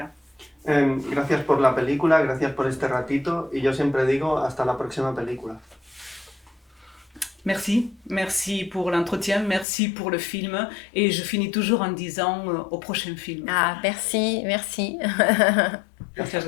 Gracias por la película, gracias por este ratito, y yo siempre digo hasta la próxima película. Merci pour l'entretien, merci pour le film, et je finis toujours en disant au prochain film. Ah, merci. Muchas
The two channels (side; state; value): right; drops out; at 9.7 s